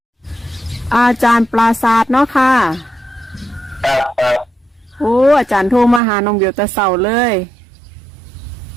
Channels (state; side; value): drops out; left; at 6.0 s